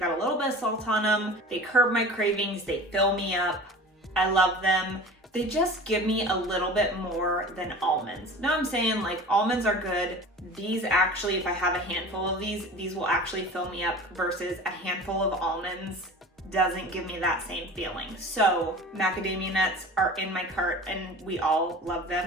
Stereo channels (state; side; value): normal; both; correlation 0.38